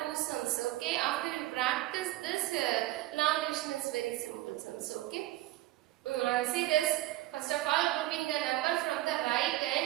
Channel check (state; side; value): quieter; left; 16.2 dB